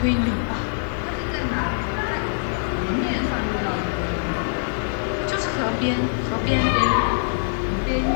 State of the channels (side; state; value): right; silent; digital silence